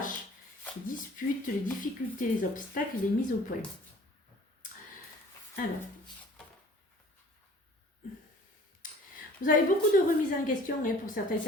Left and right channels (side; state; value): both; normal; correlation 0.49